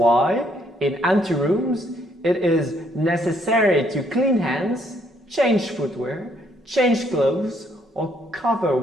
in anterooms, it is necessary to clean hands, change footwear, change clothes, or cover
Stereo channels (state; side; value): normal; both; correlation 0.69